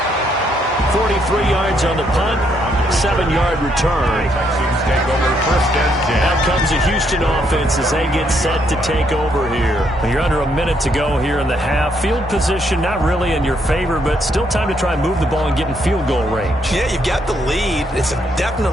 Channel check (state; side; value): normal; both; correlation 0.73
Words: $43 yards on the punt, 7-yard return. Out comes the Houston offense as they get set to take over here. You're under a minute to go here in the half. Field position not really in your favor, but still time to try and move the ball and get in field goal range. Yeah, you've got the lead. It's